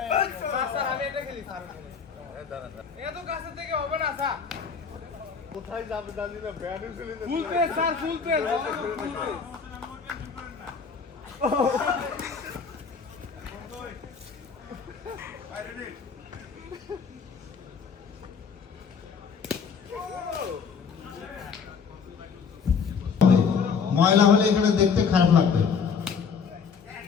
স্যার আমি এটা খেলি স্যার। এত কাছে থেকে হবে না স্যার। কোথায় যাবে জানি না, ব্যাট ফেলে না। ফুল পেস স্যার, ফুল পেস। ফুল পেস। ময়লা হলে এখানে দেখতে খারাপ লাগবে।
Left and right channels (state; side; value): quieter; right; 6.0 dB